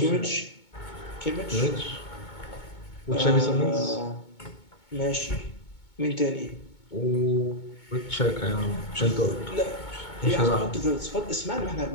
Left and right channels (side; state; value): right; late; 2.2 ms